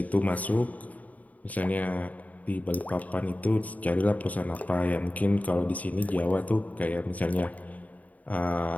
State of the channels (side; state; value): right; late; 0.072 ms